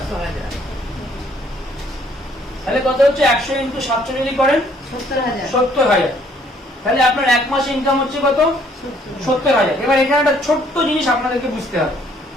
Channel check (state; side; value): normal; both; correlation 0.63